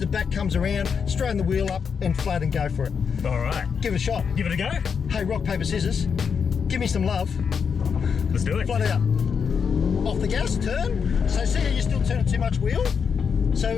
back comes around, straighten the wheel up and flat and go for it. All right. Give it a shot. Give it a go. Hey, rock, paper, scissors. Give me some love. Let's do it. Flat out. Off the gas, turn. So see how you're still turning too much wheel?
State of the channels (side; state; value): right; quieter; 6.4 dB